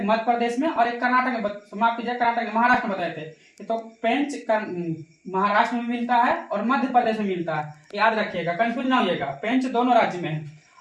मध्य प्रदेश में, और एक कर्नाटक में, माफ कीजिए, कर्नाटक में, महाराष्ट्र में बताए थे। तो पेंच महाराष्ट्र में मिलता है और मध्य प्रदेश में मिलता है। याद रखिएगा, कंफ्यूज ना होइएगा। पेंच दोनों राज्य में है।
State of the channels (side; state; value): both; identical; correlation 1.00